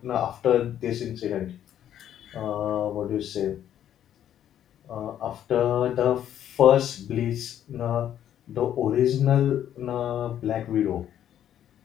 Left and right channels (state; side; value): quieter; right; 10.6 dB